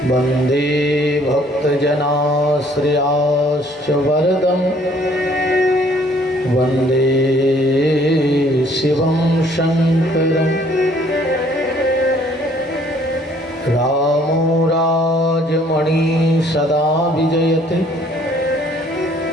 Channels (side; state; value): both; normal; correlation 0.60